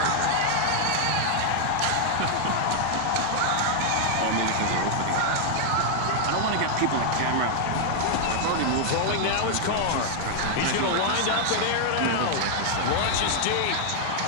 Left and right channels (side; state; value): both; different; correlation 0.00